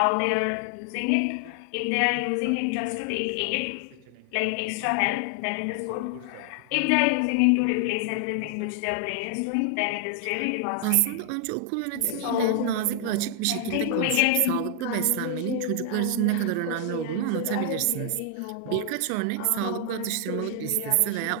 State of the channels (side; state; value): both; different; correlation 0.00